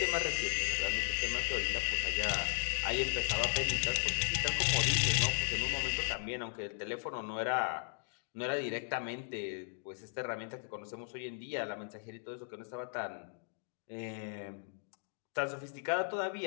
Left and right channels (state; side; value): silent; right; digital silence